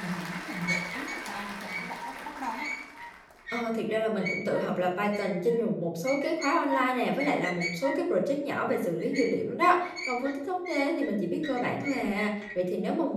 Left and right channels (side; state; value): both; identical; correlation 1.00